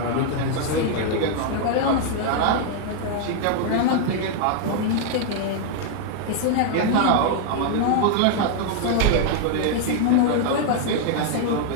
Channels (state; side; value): different; both; correlation 0.00